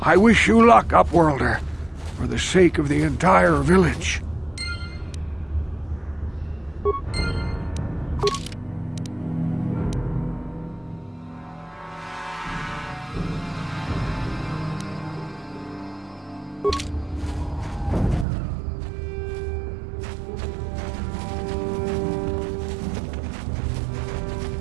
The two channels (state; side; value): drops out; left; at 18.2 s